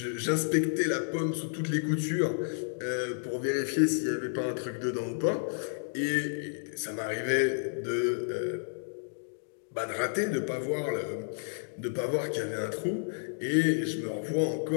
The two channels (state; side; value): silent; right; digital silence